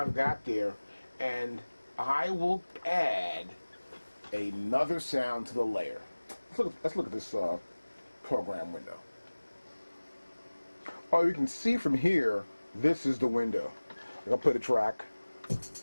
got there, and I will add another sound to the layer. Let's look at this program window. Oh, you can see from here, this is the window. I'll play the track.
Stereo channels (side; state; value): both; inverted; correlation -1.00